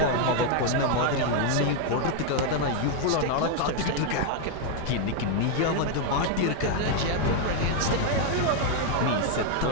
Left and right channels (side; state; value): both; different; correlation 0.01